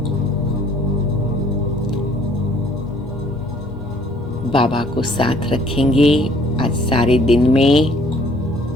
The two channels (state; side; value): normal; both; correlation 0.58